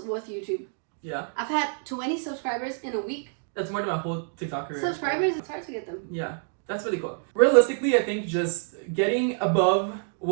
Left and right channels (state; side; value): silent; left; digital silence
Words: with YouTube. Yeah. I've had 20 subscribers in a week. That's more than my whole TikTok career. Subscribers, it's hard to get them. Yeah. That's really cool. Realistically, I think just getting above